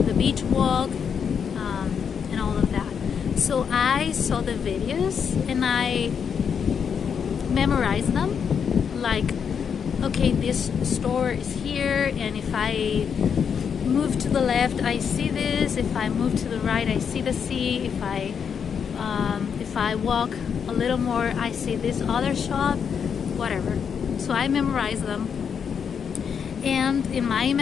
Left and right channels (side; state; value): right; quieter; 7.1 dB